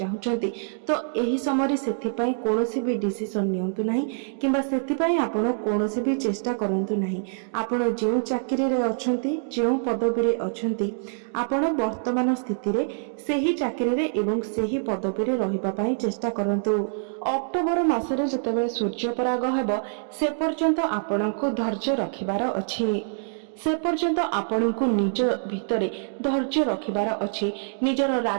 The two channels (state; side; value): silent; left; digital silence